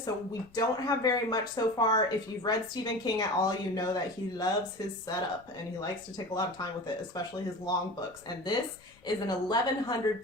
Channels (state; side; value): noise; left; rumble, 28 dB below the sound